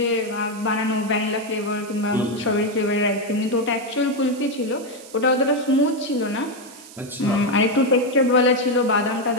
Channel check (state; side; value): noise; right; hiss, 19 dB below the sound